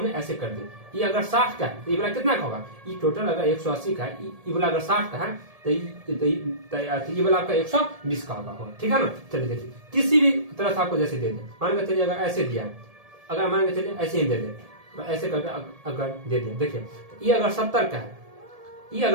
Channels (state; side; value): late; left; 1.7 ms